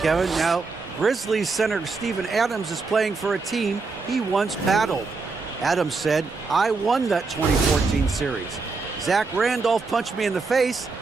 Kevin. Now, Grizzlies center Steven Adams is playing for a team he once battled. Adams said, "I won that 2014 series. Zach Randolph punched me in the face,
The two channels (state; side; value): quieter; left; 4.2 dB